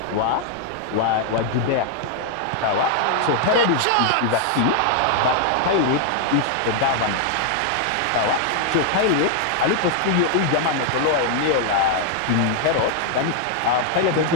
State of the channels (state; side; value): different; both; correlation 0.00